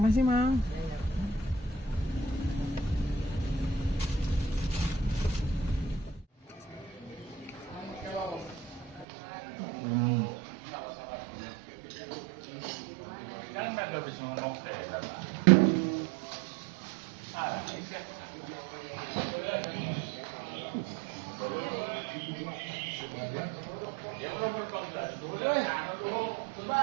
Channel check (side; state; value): left; drops out; at 9.1 s